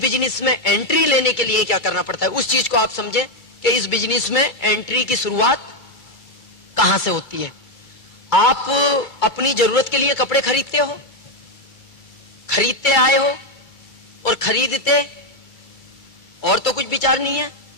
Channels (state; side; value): late; right; 2.3 ms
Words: में एंट्री लेने के लिए क्या करना पड़ता है, उस चीज को आप समझे कि इस बिजनेस में एंट्री की शुरुआत कहां से होती है। आप अपनी जरूरत के लिए कपड़े खरीदते हो, खरीदते आए हो और खरीदते, और तो कुछ विचार नहीं है।